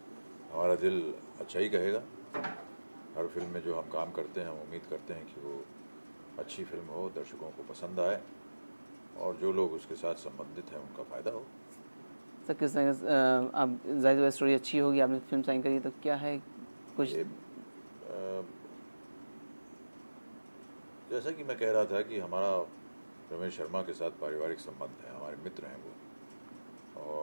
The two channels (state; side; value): inverted; both; correlation -1.00